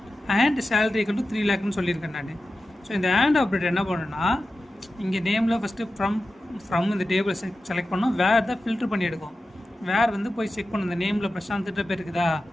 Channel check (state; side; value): normal; both; correlation 0.93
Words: அண்ட் சேலரி ஈக்குவல் டு 3 lakhன்னு சொல்லியிருக்கேன் நான். ஸோ இந்த அண்ட் ஆப்ரேட்டர் என்ன பண்ணணும்னா இங்கே நேமில் ஃபஸ்ட்டு ஃப்ரம் இந்த டேபிளை செலக்ட் பண்ணோம். வேறு தான் ஃபில்ட்ரு பண்ணி எடுக்கும். வேறு வந்து போய் செக் பண்ணணும். இந்த நேமில் பிரசாந்த்கிட்ட பேர் இருக்குதா?